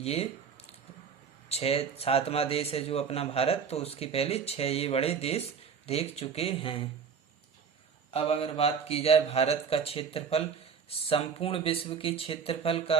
7वां देश है जो अपना भारत, तो उसके पहले 6 ये बड़े देश देख चुके हैं। अब अगर बात की जाए भारत का क्षेत्रफल संपूर्ण विश्व के क्षेत्रफल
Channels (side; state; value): left; quieter; 6.4 dB